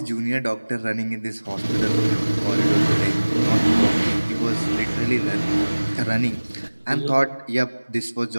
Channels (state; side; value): inverted; both; correlation -1.00